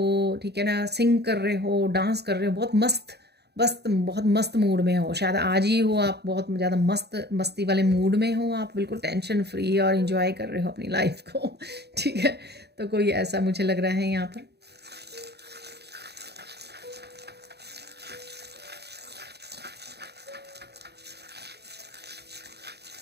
ठीक है ना, सिंग कर रहे हो, डांस कर रहे हो, बहुत मस्त मूड में हो, शायद आज ही हो आप बहुत ज़्यादा मस्ती वाले मूड में हो, आप बिल्कुल टेंशन फ्री और इंजॉय कर रहे हो अपनी लाइफ को ठीक है, तो कोई ऐसा मुझे लग रहा है यहाँ पर।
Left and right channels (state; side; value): late; left; 0.48 ms